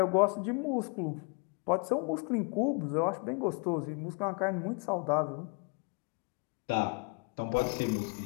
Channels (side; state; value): right; quieter; 32.7 dB